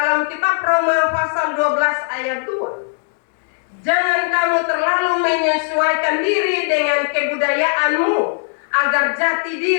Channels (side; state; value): right; silent; digital silence